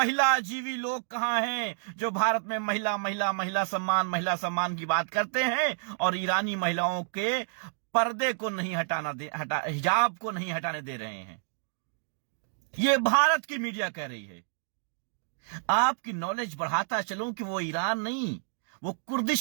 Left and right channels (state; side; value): silent; left; digital silence